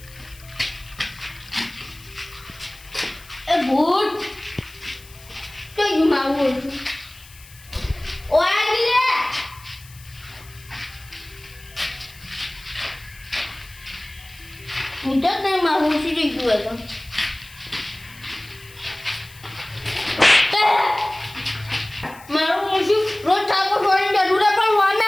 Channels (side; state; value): left; noise; hiss, 21 dB below the sound